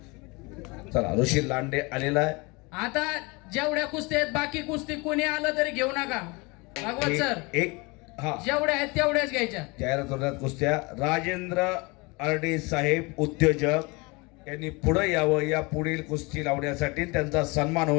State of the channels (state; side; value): quieter; right; 26.7 dB